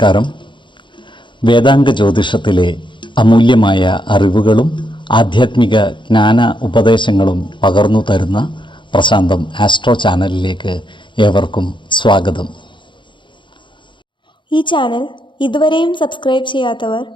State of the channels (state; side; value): late; right; 0.23 ms